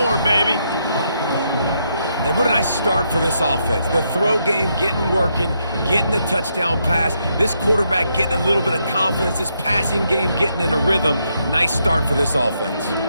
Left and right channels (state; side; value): inverted; both; correlation -0.78